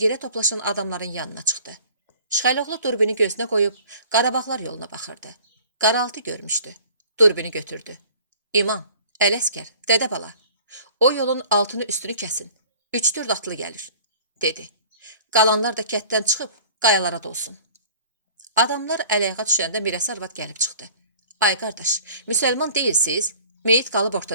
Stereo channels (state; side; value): inverted; both; correlation -0.48